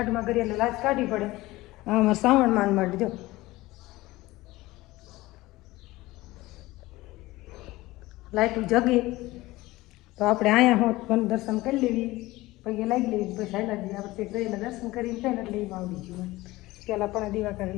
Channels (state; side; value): quieter; right; 19.0 dB